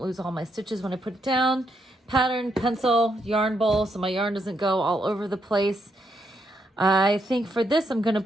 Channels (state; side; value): normal; both; correlation 0.78